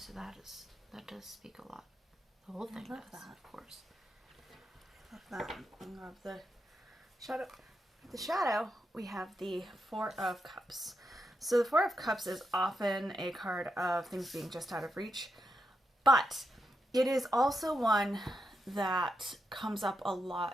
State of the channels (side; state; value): both; normal; correlation 0.84